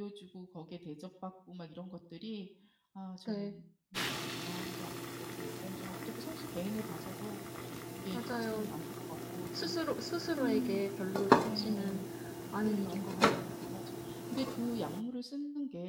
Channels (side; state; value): both; identical; correlation 1.00